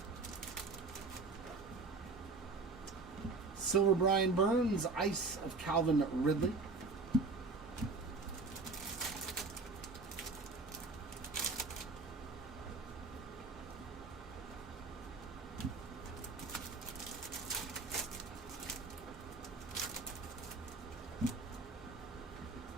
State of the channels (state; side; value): quieter; left; 3.9 dB